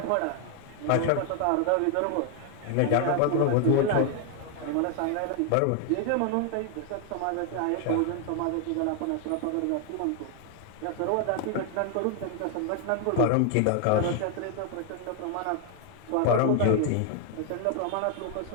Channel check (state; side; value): different; both; correlation 0.00